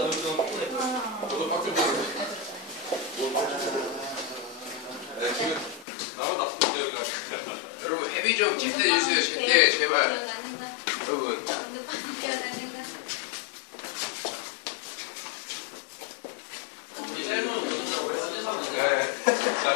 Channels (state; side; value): drops out; right; at 5.9 s